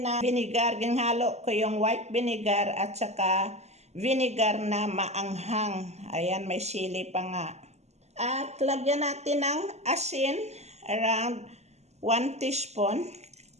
na vinegar. Ginhalo ko yung white vinegar at saka vinegar na maanghang. Ayan, may sili pa nga. At lagyan natin ng asin, around 1 teaspoon.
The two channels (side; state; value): left; late; 0.32 ms